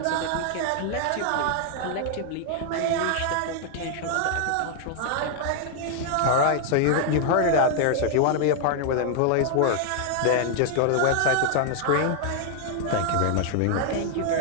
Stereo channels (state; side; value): different; both; correlation -0.01